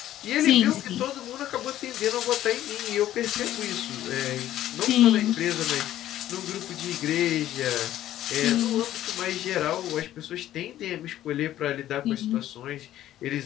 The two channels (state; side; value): quieter; right; 13.0 dB